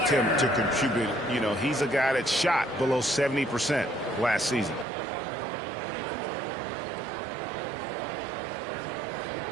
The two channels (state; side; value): drops out; left; at 4.9 s